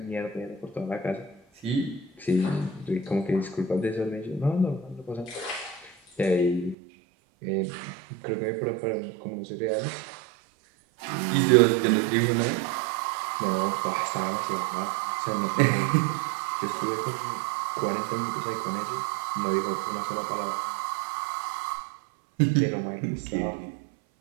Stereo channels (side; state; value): left; drops out; at 6.8 s